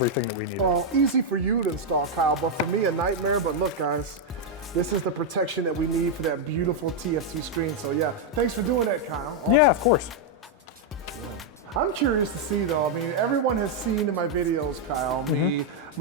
that we needed. Well, easy for you to install, Kyle, but for me, a nightmare. But look, guys, this is the protection that we need for that beautiful TFT screen. So yeah, thanks for doing that, Kyle. Awesome. Yeah, of course. Yeah. I'm curious to see though, I mean, everyone has seen in my videos, Kyle,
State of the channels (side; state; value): both; normal; correlation -0.01